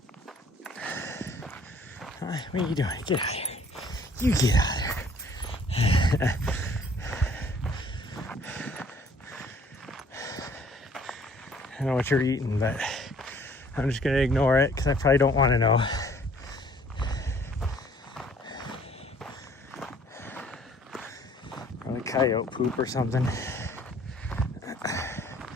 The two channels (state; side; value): normal; both; correlation 0.57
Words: What are you doing? Get out of here. You get out of there. I don't know what you're eating, but I'm just gonna ignore it because I probably don't want to know. Probably coyote poop or something.